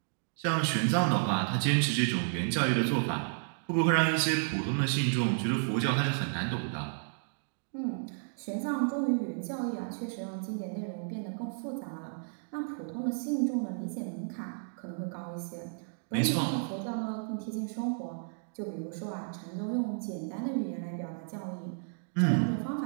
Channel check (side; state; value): left; silent; digital silence